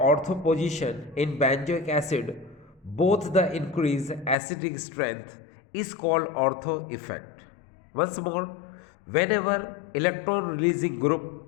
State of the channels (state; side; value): drops out; right; at 4.4 s